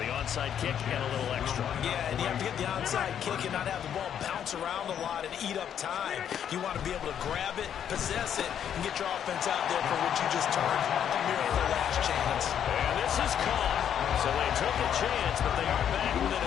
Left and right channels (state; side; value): quieter; right; 9.2 dB